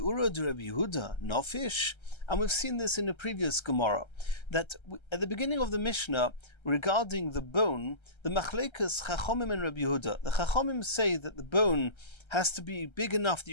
de Rabbi Yehuda, nofish. And we've seen this in a previous Gemara, that at the beginning of the Mishnah, regarding the bone, the Machlekas Chachomim and Rabbi Yehuda, the Chachomim say that the bone has to be big enough that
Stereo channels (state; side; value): late; right; 1.3 ms